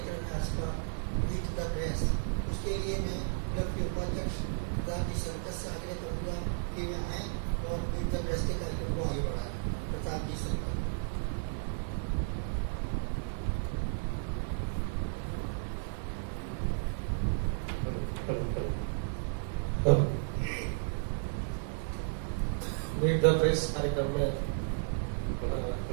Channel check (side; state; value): left; silent; digital silence